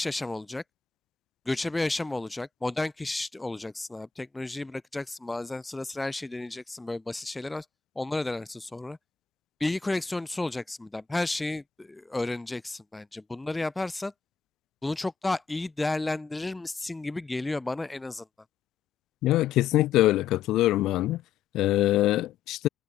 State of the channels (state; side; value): quieter; right; 6.8 dB